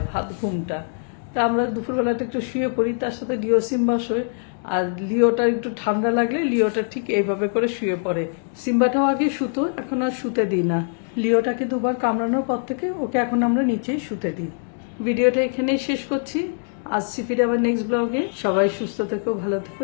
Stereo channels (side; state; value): right; silent; 60 dB below the other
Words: ভাত ঘুমটা। তা আমরা দুপুরবেলাটা একটু শুয়ে পড়ি, তার সাথে লিও সিম্বা শোয়। আর লিওটা একটু ঠান্ডা লাগলে লিওটা ঠিক এইভাবে করে শুয়ে পড়ে। সিম্বাটাও আগে শুতো, এখন আর শুতে দিই না। লিওটাকে 2 বার কামড়ানোর পর থেকে ওকে এখন আমরা নিচেই শুতে দিই। ভিডিওটা এখানেই শেষ করছি, আসছি ফিরে আবার নেক্সট ব্লগে। সবাই সুস্থ থেকো, ভালো থেকো।